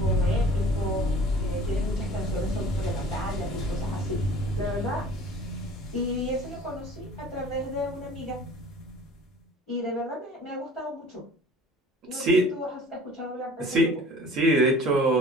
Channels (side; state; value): both; normal; correlation 0.46